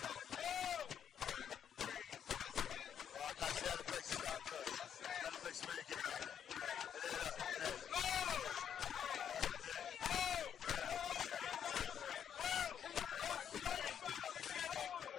Right, okay, so now the police are starting to push. Now the police are really getting angry. And there, look, and there, look. And there.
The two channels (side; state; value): right; quieter; 8.7 dB